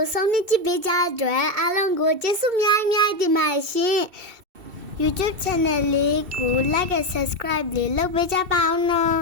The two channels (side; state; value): left; late; 2.7 ms